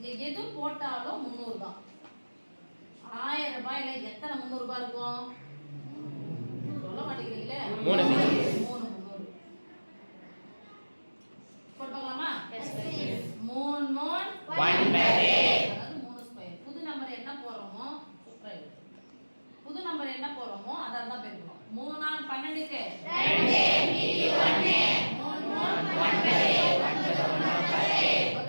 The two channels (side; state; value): both; inverted; correlation -1.00